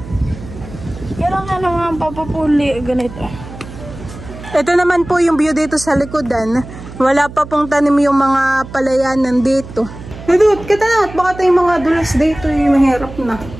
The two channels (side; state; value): right; noise; hum, 14 dB below the sound